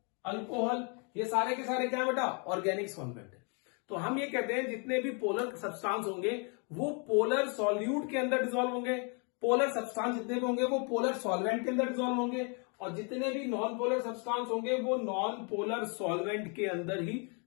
alcohol. ये सारे के सारे क्या है बेटा? ऑर्गेनिक सॉल्वेंट है. तो हम ये कहते हैं जितने भी पोलर सब्सटेंस होंगे वो पोलर सॉल्यूट के अंदर डिसॉल्व होंगे. पोलर सब्सटेंस जितने भी होंगे वो पोलर सॉल्वेंट के अंदर डिसॉल्व होंगे. और जितने भी नॉन पोलर सब्सटेंस होंगे वो नॉन पोलर सॉल्वेंट के अंदर ही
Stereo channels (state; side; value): quieter; right; 36.6 dB